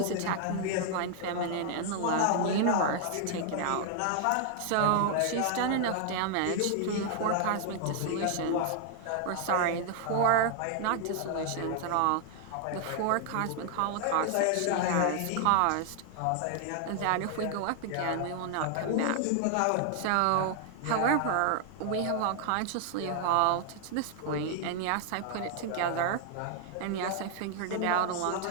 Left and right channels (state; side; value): different; both; correlation 0.00